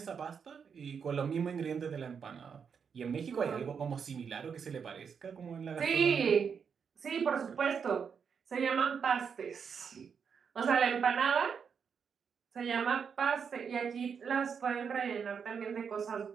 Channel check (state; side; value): quieter; left; 6.6 dB